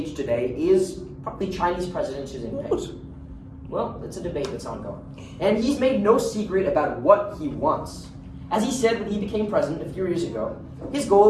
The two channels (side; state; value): both; identical; correlation 1.00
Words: today is probably Chinese President Xi Jinping. What? Well, it's a debate that's ongoing. And he's made no secret about what he wants. As he said when he became president a few years ago, his